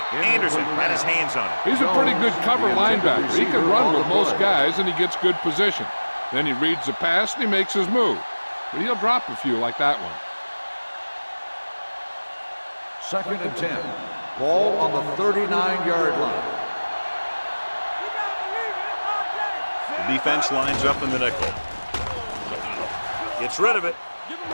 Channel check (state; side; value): inverted; both; correlation -1.00